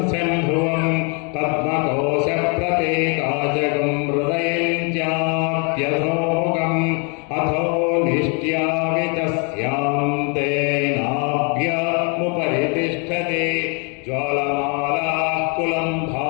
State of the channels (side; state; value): right; quieter; 35.3 dB